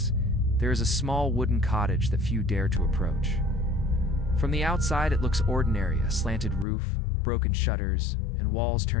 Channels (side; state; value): right; drops out; at 6.7 s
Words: there is a small wooden cottage that few dare to approach. From the outside, it looks ordinary, a slanted roof, broken shutters, and walls